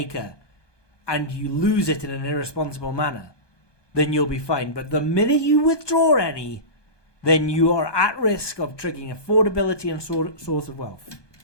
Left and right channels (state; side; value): late; right; 1.2 ms